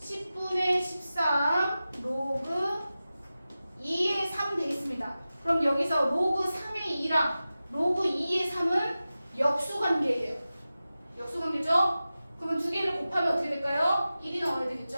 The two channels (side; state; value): both; inverted; correlation -0.95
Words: 13 로그 2의 3 되겠습니다. 그럼 여기서 로그 3의 2랑 로그 2의 3은 역수관계예요. 역수관계죠? 그러면 두 개를 곱하면 어떻게 될까요? 1이 나와야